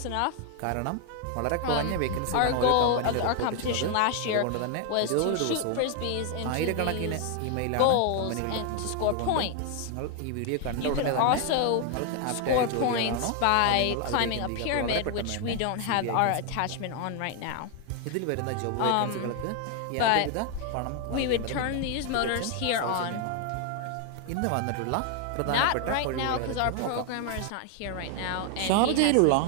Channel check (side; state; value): both; different; correlation 0.00